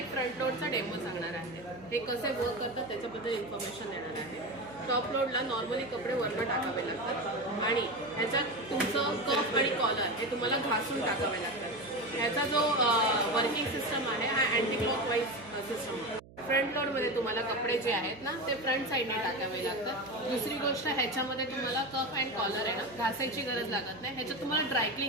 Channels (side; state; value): right; noise; hum, 21 dB below the sound